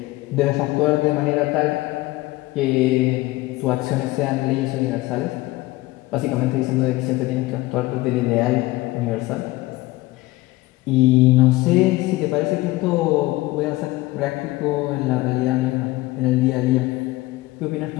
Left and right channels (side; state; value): right; quieter; 19.5 dB